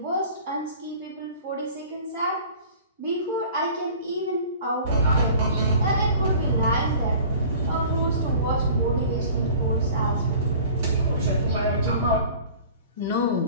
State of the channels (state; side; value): inverted; both; correlation -0.45